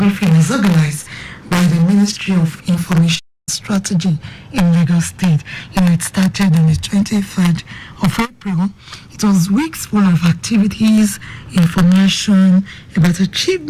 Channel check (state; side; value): identical; both; correlation 1.00